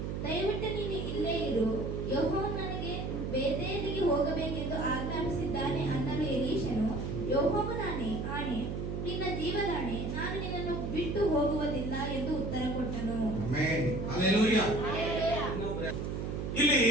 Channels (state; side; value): noise; right; hum, 3 dB below the sound